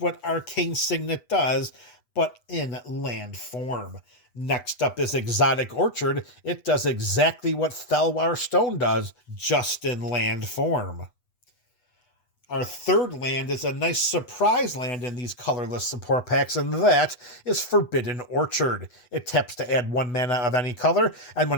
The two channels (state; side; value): late; right; 8.1 ms